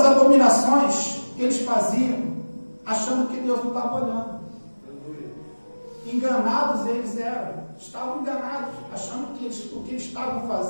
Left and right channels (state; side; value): inverted; both; correlation -1.00